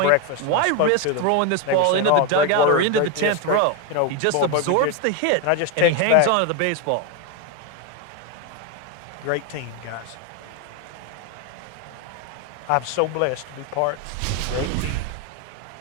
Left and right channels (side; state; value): both; different; correlation 0.02